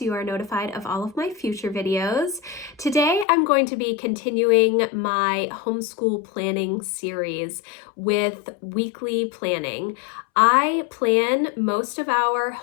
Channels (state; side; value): drops out; right; at 3.2 s